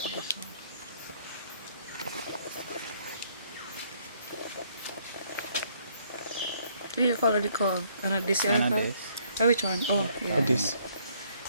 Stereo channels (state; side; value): inverted; both; correlation -0.66